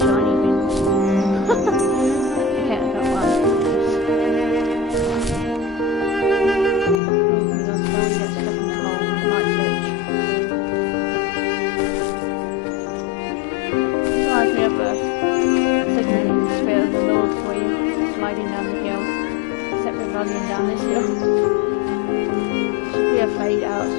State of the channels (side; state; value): right; drops out; at 7.0 s